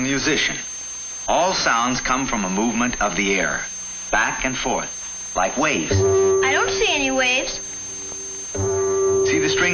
All sounds come from a movement of the air, back and forth, like waves. I don't see any waves. See the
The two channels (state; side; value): identical; both; correlation 1.00